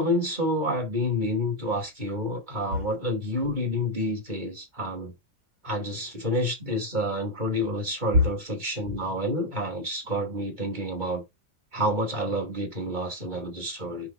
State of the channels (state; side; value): late; left; 2.2 ms